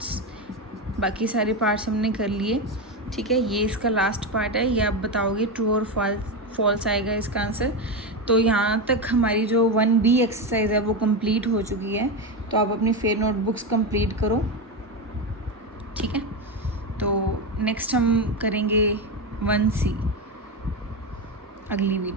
बाकी सारे पार्ट्स हमने कर लिए। ठीक है, ये इसका लास्ट पार्ट है, ये आप बताओगे ट्रू और फॉल्स आएगा इसका आंसर। तो यहाँ तक हमारी जो 1B एक्सरसाइज है वो कंप्लीट हो चुकी है, तो आप अपनी फेयर नोटबुक्स कंप्लीट करो। ठीक है, तो नेक्स्ट हम करेंगे 1C अगली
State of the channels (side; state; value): both; normal; correlation 0.14